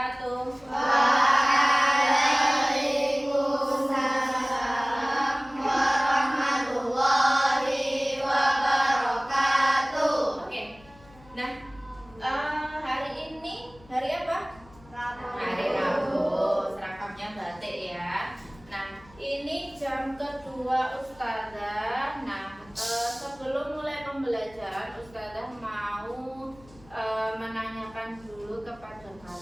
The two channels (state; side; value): noise; left; hum, 25 dB below the sound